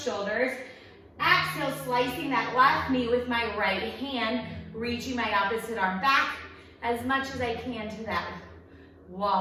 shoulders. Exhale, slicing that left knee with my right hand, reaching my opposite arm back as much as I can to that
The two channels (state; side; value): identical; both; correlation 1.00